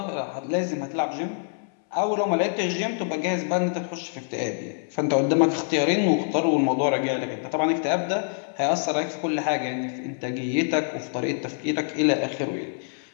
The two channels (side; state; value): right; silent; 61 dB below the other